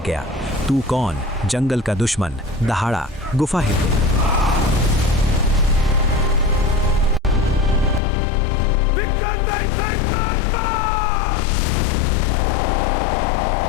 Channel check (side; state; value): right; drops out; at 8.0 s